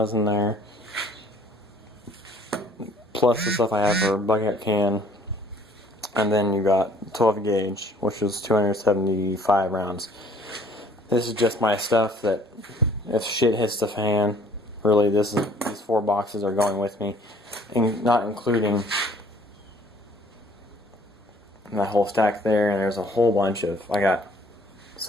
in there, plus the stuff I have for bucket can. And then you got 12 gauge, which is 275 rounds. This is just my stuff that if shit hits the fan, really these 4 boxes are going with me, and not including that whole stack there. And there's a whole bunch of, I got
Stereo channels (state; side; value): normal; both; correlation 0.58